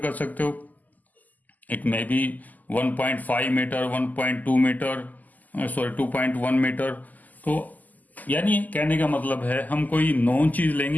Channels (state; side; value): late; right; 0.081 ms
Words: सकते हो। It may be 1.5 metre, 1.2 metre, sorry 2.1 metre. तो यानी कहने का मतलब है हम कोई नॉन चीज